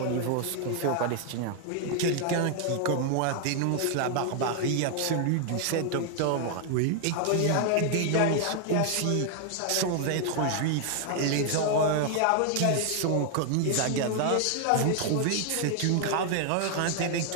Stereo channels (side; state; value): both; different; correlation 0.00